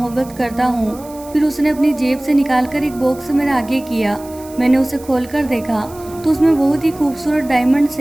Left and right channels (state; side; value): noise; right; hiss, 21 dB below the sound